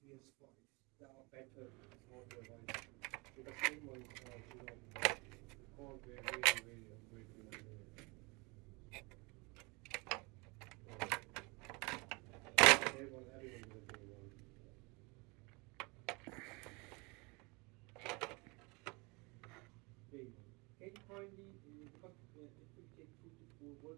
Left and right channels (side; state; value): left; quieter; 27.6 dB